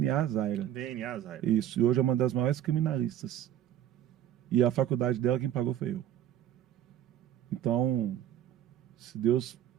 Zaira. DNA, Zaira. Isso, e hoje é uma das maiores criminalistas. E a faculdade dela, quem pagou foi eu. Então, se Deus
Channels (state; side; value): quieter; left; 11.4 dB